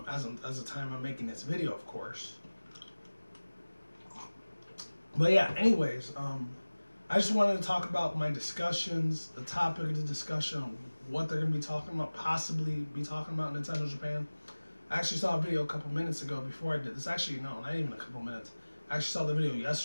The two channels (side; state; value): both; inverted; correlation -1.00